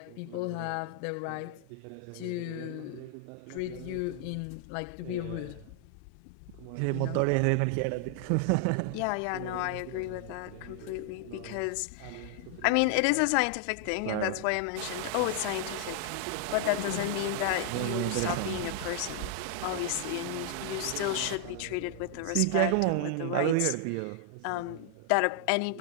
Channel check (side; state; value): both; different; correlation 0.00